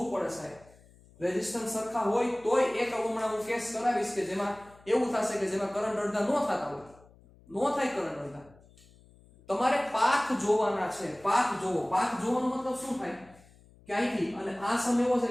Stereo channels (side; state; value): left; noise; hum, 26 dB below the sound